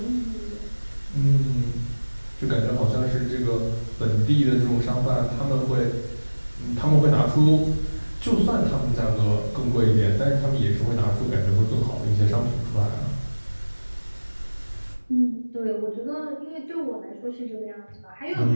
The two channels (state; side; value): inverted; both; correlation -1.00